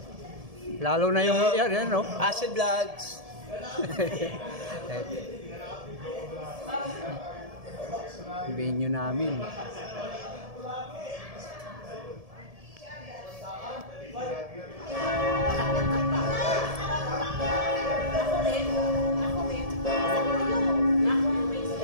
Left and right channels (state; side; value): late; left; 1.7 ms